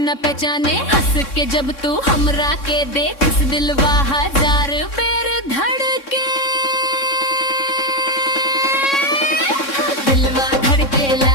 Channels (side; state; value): right; late; 3.6 ms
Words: पहचाने। हंस के जब तू हमरा के देख, दिलवा हजार बेर धड़के। दिलवा